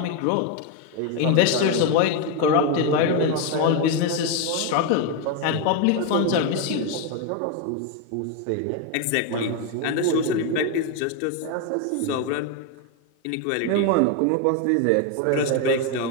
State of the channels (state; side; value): different; both; correlation 0.02